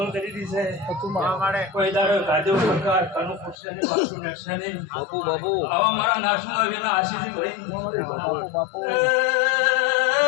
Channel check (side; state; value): right; drops out; at 3.6 s